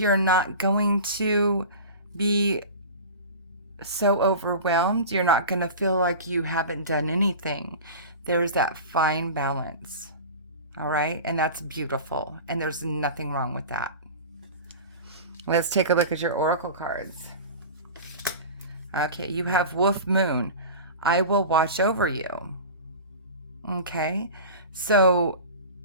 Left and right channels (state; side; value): inverted; both; correlation -0.33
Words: not going to be so overwhelmed. You're not going to feel like you haven't done anything. There's that fine balance. All right? And that's beautiful. And there's nothing wrong with that. Let's take a look at your oracle cards. Okay, you have Wolf Moon. I will watch over you. Okay? So